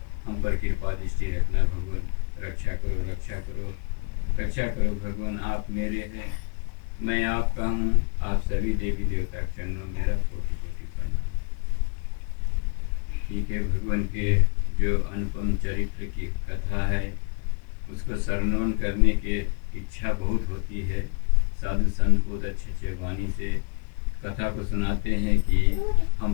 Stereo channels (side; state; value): right; quieter; 34.0 dB